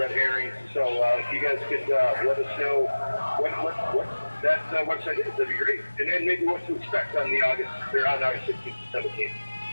herrings. So if you guys could let us know what that website is, that'd be great. And then maybe what to expect on August 16th and 17th.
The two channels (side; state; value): both; inverted; correlation -1.00